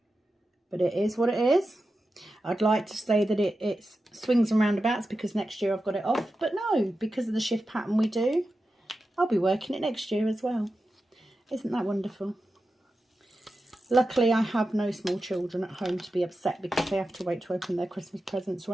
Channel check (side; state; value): both; normal; correlation 0.91